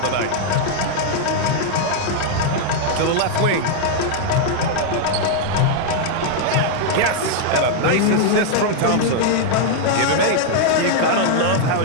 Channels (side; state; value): both; different; correlation 0.00